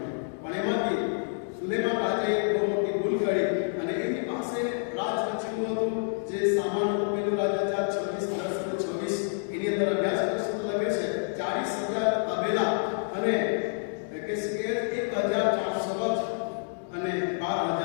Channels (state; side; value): silent; right; digital silence